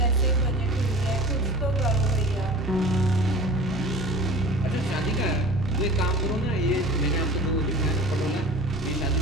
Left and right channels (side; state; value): both; normal; correlation 0.40